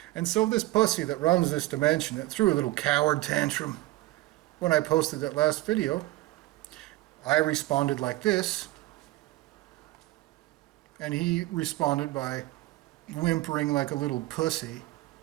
And so this pussy that runs this dimension, that threw a little coward tantrum when I posted that last video, I responded like this, and he responded by whimpering like a little pussy,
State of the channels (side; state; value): left; quieter; 18.1 dB